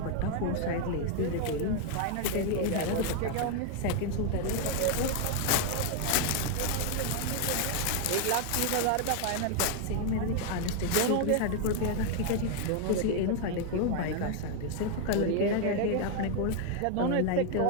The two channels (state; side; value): different; both; correlation 0.00